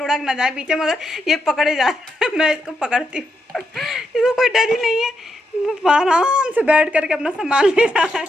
ना जाए पीछे, मगर ये पकड़े जाए। मैं इसको पकड़ती हूँ, इसको कोई डर ही नहीं है। आराम से बैठ करके अपना सामान ले रहा है,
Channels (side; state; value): both; normal; correlation 0.82